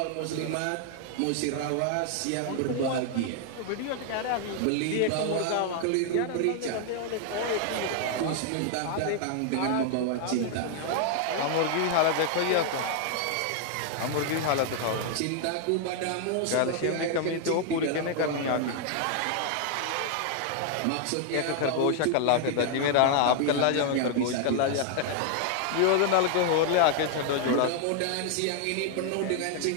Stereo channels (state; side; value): different; both; correlation 0.00